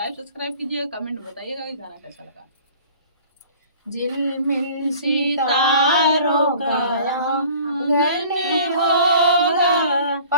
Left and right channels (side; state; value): both; inverted; correlation -0.48